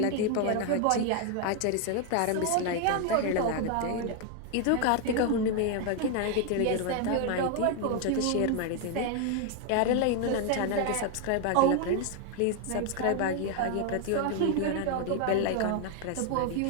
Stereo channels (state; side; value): different; both; correlation 0.00